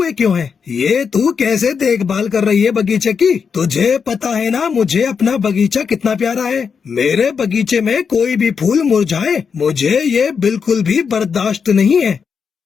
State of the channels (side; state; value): right; quieter; 6.1 dB